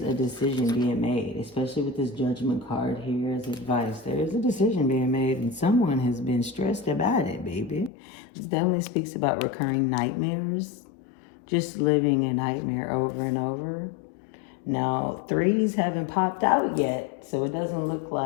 a decision being made, especially with this Judgment card here as advice. There is a decision being made, and someone has been stressed about it, baby. This definitely speaks about recurring nightmares, just living a nightmare over and over. Now, threes haven't popped out yet, so it doesn't look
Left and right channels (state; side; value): drops out; right; at 7.9 s